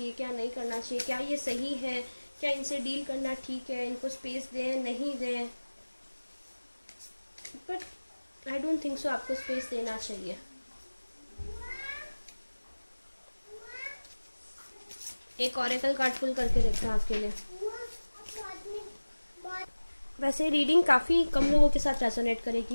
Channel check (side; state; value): both; inverted; correlation -1.00